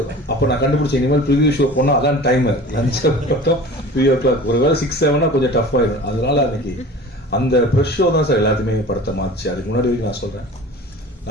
அப்போ நான் கண்டுபிடிச்ச இனிமேல் ப்ரிவியூ ஷோ போனால் அதான் டைமர் லஞ்ச் 3:00 ஒரு வேலை 6-7 கொஞ்சம் டஃப் ஆயிடும். அதனால அன்னைக்கு அந்த ப்ரெஷ் ஷோ தான் சார் எல்லாத்தையுமே படத்தை மாறிச்சு. அதுக்கு முன்னாடி வரைக்கும் நான் சொல்றேன்,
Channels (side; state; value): both; normal; correlation 0.40